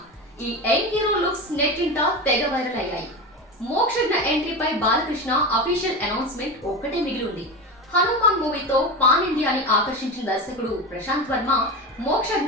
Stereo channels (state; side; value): normal; both; correlation 0.23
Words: ఈ యంగ్ హీరో లుక్స్ నెట్టింట తెగ వైరల్ అయ్యాయి. మోక్షజ్ఞ ఎంట్రీపై బాలకృష్ణ అఫీషియల్ అనౌన్స్మెంట్ ఒక్కటే మిగిలి ఉంది. హనుమాన్ మూవీతో పాన్ ఇండియాని ఆకర్షించిన దర్శకుడు ప్రశాంత్ వర్మ